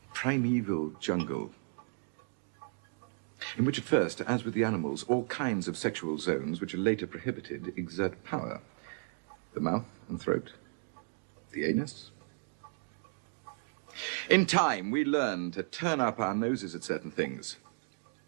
primeval jungle, in which at first, as with the animals, all kinds of sexual zones which are later prohibited exert power. The mouth and throat, the anus. In time, we learn to turn up our noses at certain things.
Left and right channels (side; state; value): left; silent; 55 dB below the other